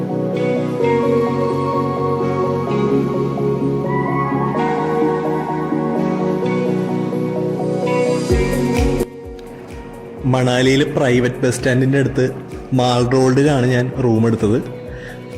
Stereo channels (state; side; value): identical; both; correlation 1.00